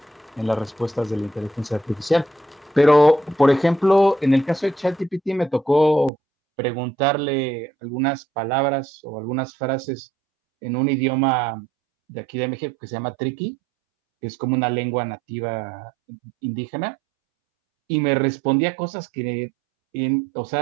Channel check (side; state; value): left; drops out; at 6.1 s